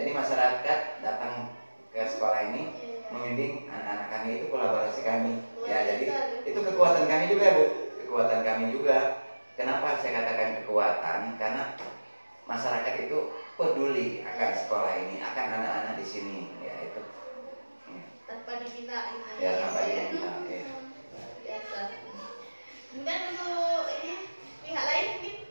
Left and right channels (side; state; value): both; inverted; correlation -1.00